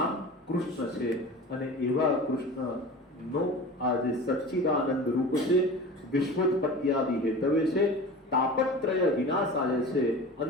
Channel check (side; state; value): both; normal; correlation 0.35